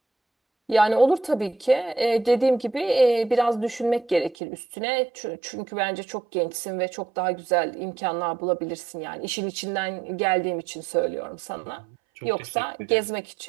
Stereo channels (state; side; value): drops out; left; at 4.4 s